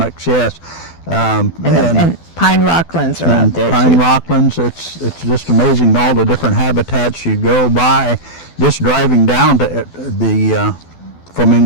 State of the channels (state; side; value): late; right; 12 ms